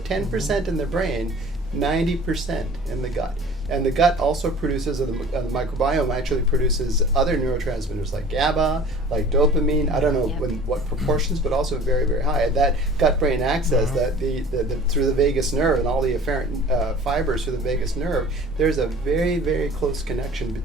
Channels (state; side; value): normal; both; correlation 0.45